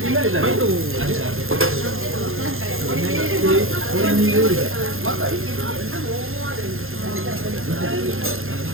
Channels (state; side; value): late; left; 0.60 ms